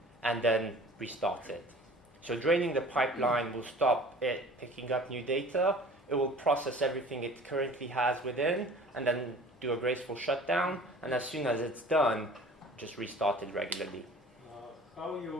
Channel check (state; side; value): normal; both; correlation 0.45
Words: and then restart it. So draining the pipeline will stop it picking up new data. It will process everything it currently has within and then do a graceful shutdown. And as soon as it's done, just restart it regularly. How